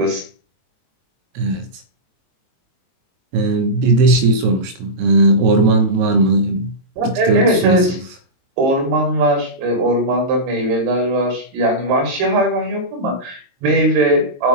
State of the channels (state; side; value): late; left; 22 ms